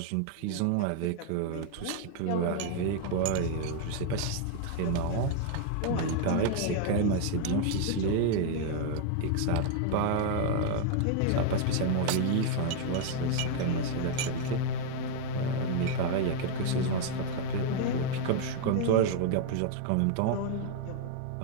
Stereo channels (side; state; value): both; different; correlation 0.00